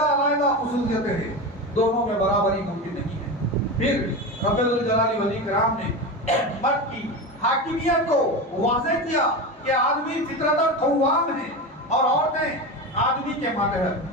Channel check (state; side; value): normal; both; correlation 0.22